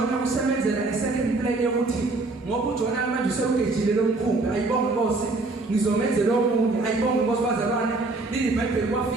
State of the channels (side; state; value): left; quieter; 3.3 dB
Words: usemenzela second plan yokuthi ngoba uJona manje usewugejile lo mkhumbi. Ayibonge Nkosi. Ngizomenzela omunye. Ayibonge Nkosi bazalwane. IBhayibheli